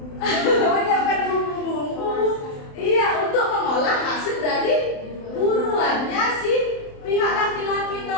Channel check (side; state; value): right; late; 27 ms